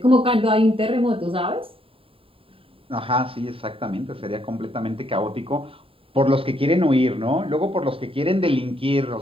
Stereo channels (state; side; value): late; left; 0.27 ms